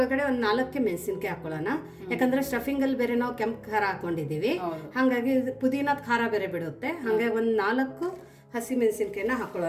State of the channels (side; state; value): both; identical; correlation 1.00